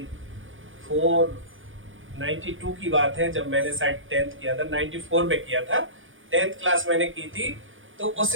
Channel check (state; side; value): late; left; 0.58 ms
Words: 92 की बात है, जब मैंने शायद 10th किया था, 94 में किया था, 10th क्लास मैंने की थी। तो